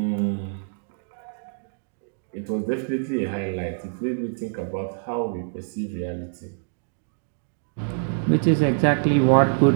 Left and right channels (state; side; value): silent; left; digital silence